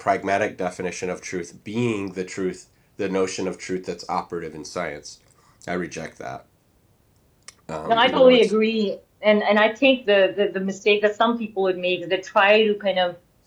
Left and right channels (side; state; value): both; identical; correlation 1.00